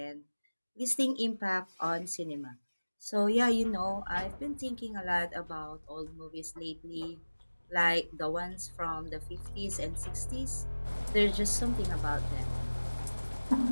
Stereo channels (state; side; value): inverted; both; correlation -1.00